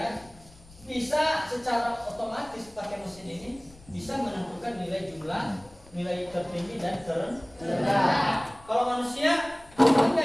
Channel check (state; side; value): noise; left; rumble, 24 dB below the sound